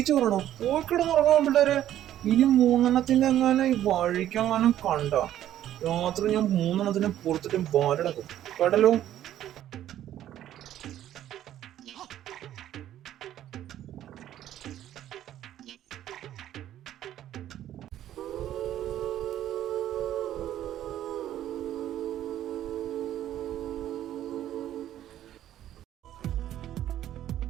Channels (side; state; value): left; quieter; 12.0 dB